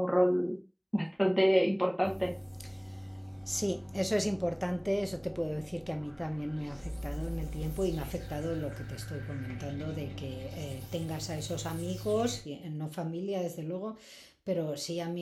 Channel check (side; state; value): both; identical; correlation 1.00